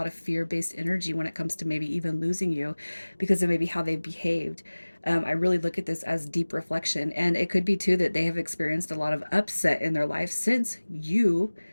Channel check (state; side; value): inverted; both; correlation -1.00